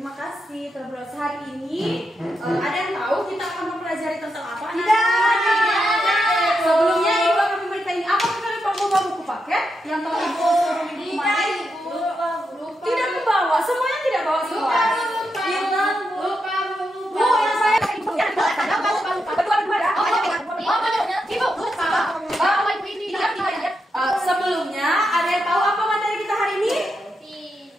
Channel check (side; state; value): both; normal; correlation 0.84